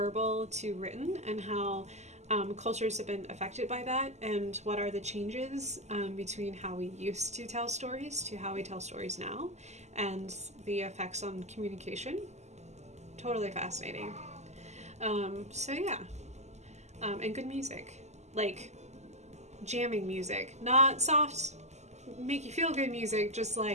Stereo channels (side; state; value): left; late; 0.33 ms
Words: to written, and how cultures have been affected by that, and what are the changes between how we used to tell stories to how we tell stories now, and the effects on communication. Totally fascinating. So yeah, and good music, like jamming music, not soft, make you feel good music, just